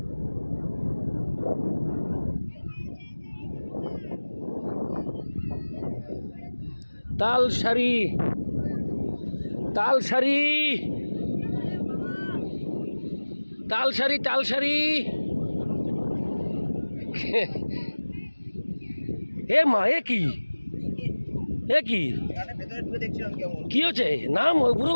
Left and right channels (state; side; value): inverted; both; correlation -1.00